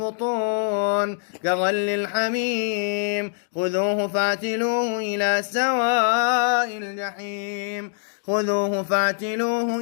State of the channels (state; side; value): silent; right; digital silence